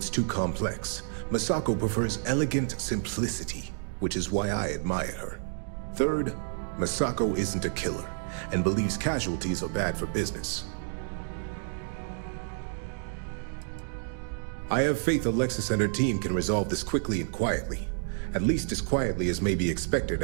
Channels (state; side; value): silent; left; digital silence